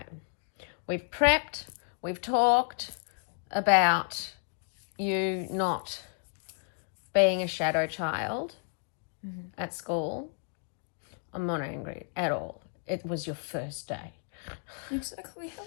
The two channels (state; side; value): silent; right; 57 dB below the other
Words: We've prepped, we've talked about you not being a shadow child at school. I'm not angry at all. It was your first day. Exactly.